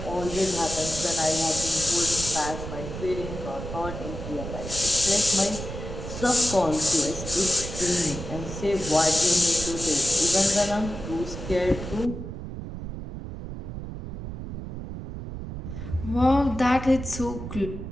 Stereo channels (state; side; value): noise; right; rumble, 8 dB below the sound